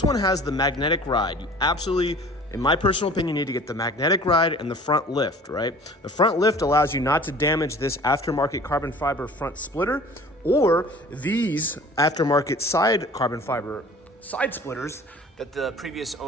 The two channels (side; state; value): both; normal; correlation 0.46